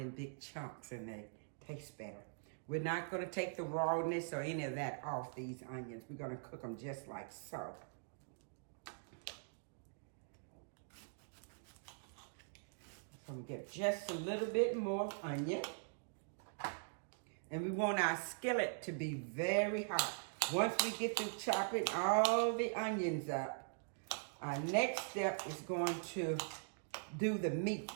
big chunks, and they taste better. We're not going to take the rawness or any of that off these onions. We're going to cook them just like so. I'm going to get just a little bit more onion. And we want our skillet to be very hot. Once we get through chopping all the onions up, our next step is going to do the meat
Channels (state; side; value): silent; left; digital silence